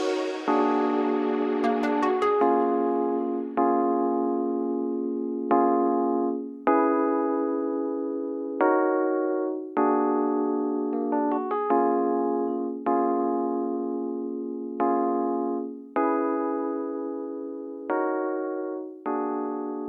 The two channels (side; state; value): both; identical; correlation 1.00